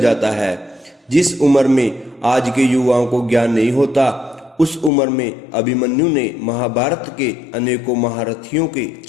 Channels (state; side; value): drops out; right; at 4.9 s